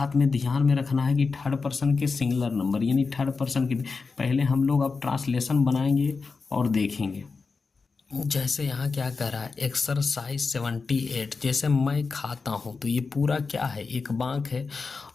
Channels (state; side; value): quieter; right; 4.5 dB